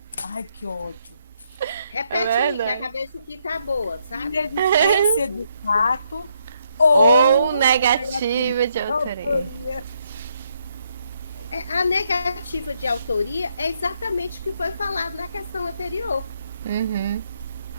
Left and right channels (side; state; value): both; inverted; correlation -0.75